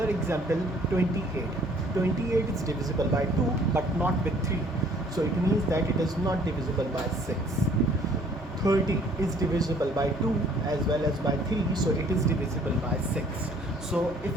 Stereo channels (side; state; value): both; normal; correlation 0.58